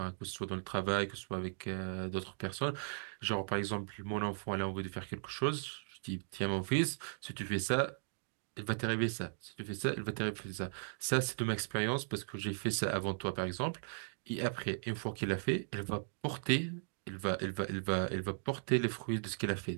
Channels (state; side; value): silent; left; digital silence